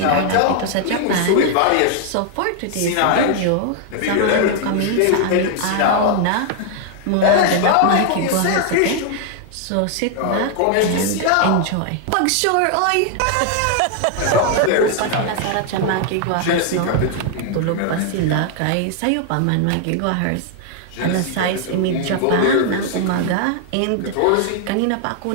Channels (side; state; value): both; different; correlation 0.00